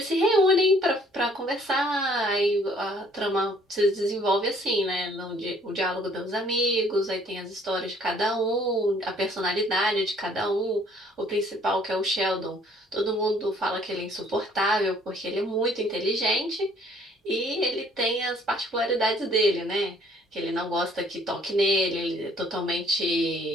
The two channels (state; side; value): normal; both; correlation 0.60